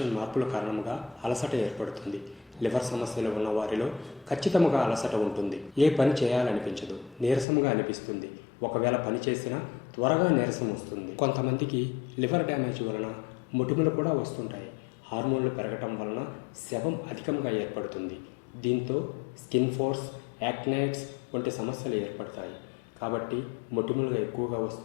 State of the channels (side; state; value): right; drops out; at 7.5 s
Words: మార్పుల కారణంగా అలసట ఏర్పడుతుంది. లివర్ సమస్యలు ఉన్న వారిలో ఖచ్చితంగా అలసట ఉంటుంది. ఏ పని చేయాలనిపించదు, నీరసంగా అనిపిస్తుంది. ఒకవేళ పని చేసినా త్వరగా నీరసం వస్తుంది. కొంతమందికి లివర్ డ్యామేజ్ వలన మొటిమలు కూడా వస్తుంటాయి. హార్మోన్లు పెరగటం వలన శవం అధికంగా ఏర్పడుతుంది. దీంతో స్కిన్ ఫోర్స్, యాక్నైట్స్ వంటి సమస్యలు ఏర్పడతాయి. కాబట్టి మొటిమలు ఎక్కువగా